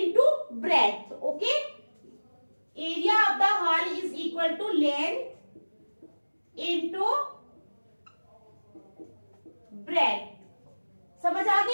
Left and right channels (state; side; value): inverted; both; correlation -1.00